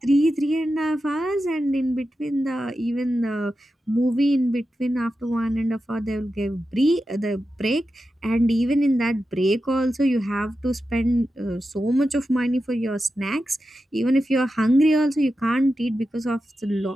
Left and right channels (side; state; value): both; normal; correlation 0.91